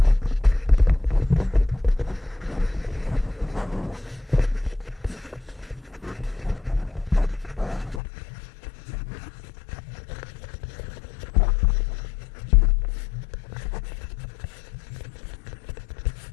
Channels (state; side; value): drops out; right; at 8.0 s